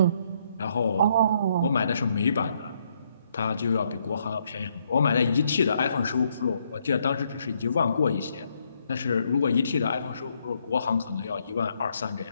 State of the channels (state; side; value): inverted; both; correlation -0.74